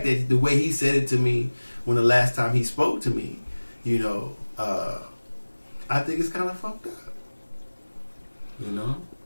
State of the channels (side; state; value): both; inverted; correlation -1.00